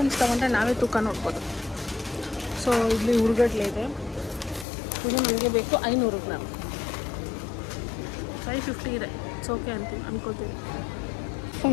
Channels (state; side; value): drops out; right; at 4.7 s